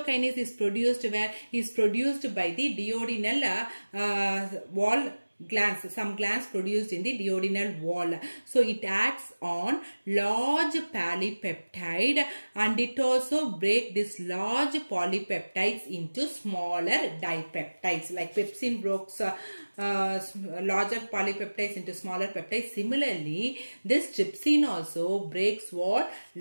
is produced where? Is produced by the duodenal wall glands. Some glands produced in the duodenal wall. So it acts on large polypeptide, and it also breaks this large polypeptides into smaller dipeptides. Like pepsin breaks larger polypeptides into smaller peptides. Similarly, this trypsin also breaks what?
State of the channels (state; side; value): inverted; both; correlation -1.00